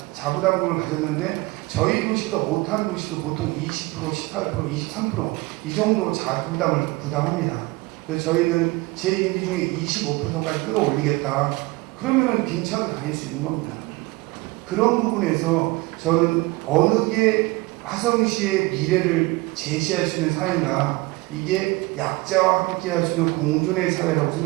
자부담금을 가졌는데, 저희 도시보다 못한 도시도 보통 20%, 18%, 23% 이 정도 자부담을 부담합니다. 그래서 저희는 제 임기 중에 25%까지 끌어올리겠다. 그러면은 빈차도 다닐 수 있는 겁니다. 그런 부분에서 저는 어느 게 화성시의 미래를 제시할 수 있는 사회인가, 이게 약자와 함께 할 수 있는 공존의 사회라고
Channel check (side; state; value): left; quieter; 22.4 dB